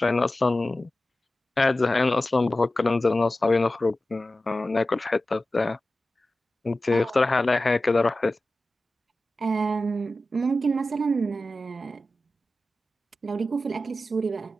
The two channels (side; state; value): both; normal; correlation 0.95